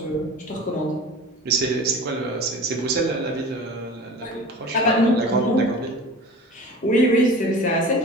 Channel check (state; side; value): normal; both; correlation 0.37